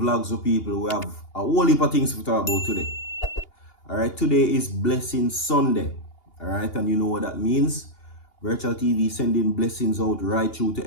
of People. We have a whole heap of things to talk about today. Alright, today is Blessing Sunday. Alright, and you know what that means. Virtual TV sending blessings out right through to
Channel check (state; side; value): late; right; 2.8 ms